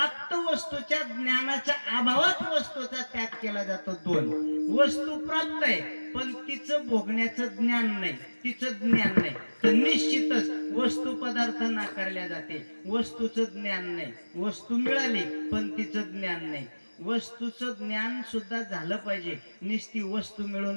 वस्तूच्या ज्ञानाच्या अभावात वस्तूचा त्याग केला जातो. 2. वस्तू प्राप्त आहे पण तिचं भोगण्याचं ज्ञान नाही, तिचं ज्ञान नाही, तर निश्चितच वस्तू पदार्थ नाकारल्या जाते. वस्तूचं ज्ञान नाही. वस्तू मिळाली पण तिचं ज्ञान नाही. वस्तूचं ज्ञान सुद्धा झालं पाहिजे. नुसती वस्तू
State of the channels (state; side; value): inverted; both; correlation -1.00